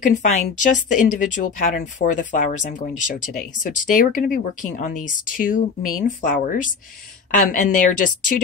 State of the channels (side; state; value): right; quieter; 5.4 dB